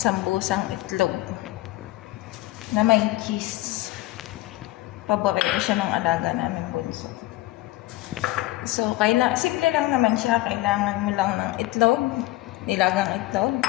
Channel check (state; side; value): quieter; right; 17.5 dB